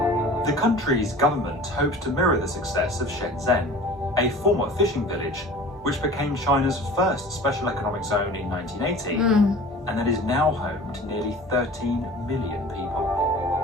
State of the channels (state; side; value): normal; both; correlation 0.41